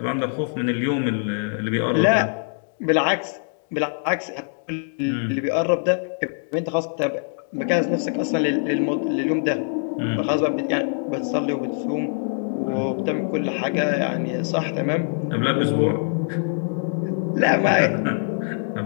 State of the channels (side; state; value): right; silent; digital silence